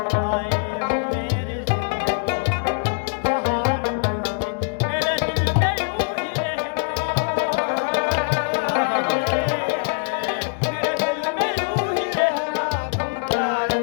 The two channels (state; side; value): silent; right; 64 dB below the other